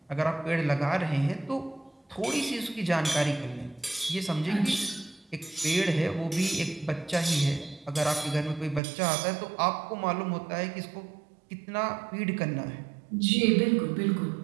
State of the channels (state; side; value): drops out; left; at 8.8 s